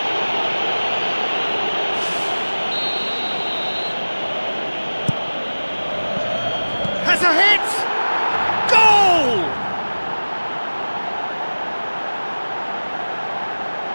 Has a hit! Goal!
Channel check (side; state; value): both; inverted; correlation -1.00